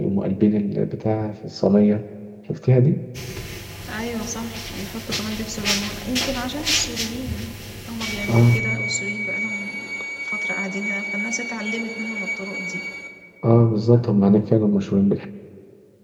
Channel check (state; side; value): identical; both; correlation 1.00